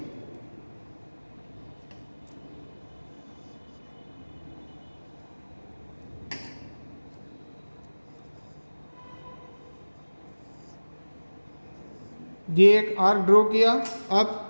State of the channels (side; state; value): both; inverted; correlation -1.00